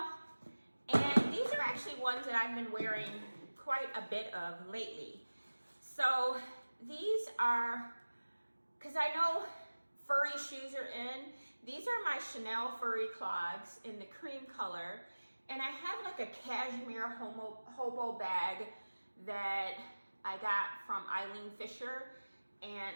and these are actually ones that I've been wearing quite a bit of lately. So these are, because I know furry shoes are in, these are my Chanel furry clogs in the cream color, and I have like a cashmere hobo bag that I got from Eileen Fisher, and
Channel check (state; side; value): inverted; both; correlation -1.00